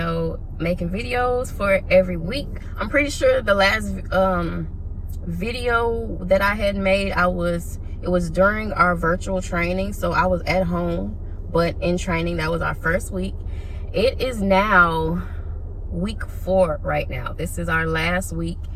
making videos for every week. I'm pretty sure the last video that I had made, it was during our virtual training, so I was at home, but in training. That was our first week. It is now week 4 right now. This is our last week.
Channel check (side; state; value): both; identical; correlation 1.00